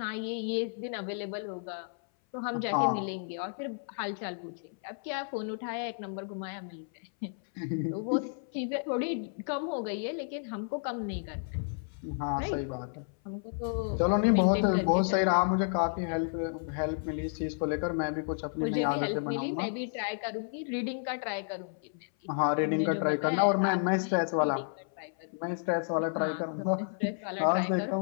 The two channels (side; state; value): right; silent; 57 dB below the other